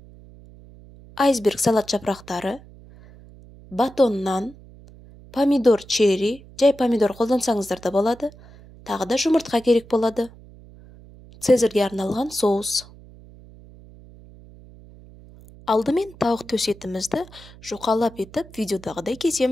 айсберг салат жапырақтары, батон нан, помидор черри, жай помидор қолдансаңыздар да болады, тағы да жұмыртқа керек болады, цезарьге арналған соус. Алдымен тауық төс етімізді жұқалап етіп видеодағыдай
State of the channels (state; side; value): noise; right; hum, 21 dB below the sound